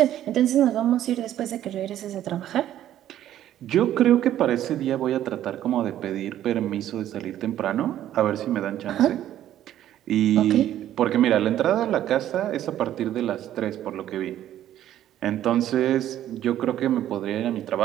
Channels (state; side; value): quieter; left; 12.0 dB